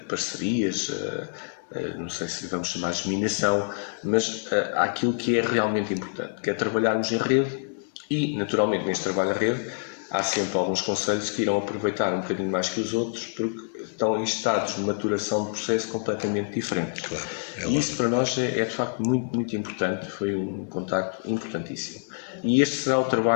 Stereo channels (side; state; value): right; silent; digital silence